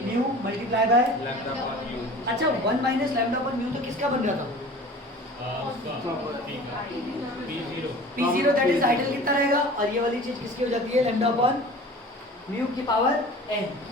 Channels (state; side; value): normal; both; correlation 0.41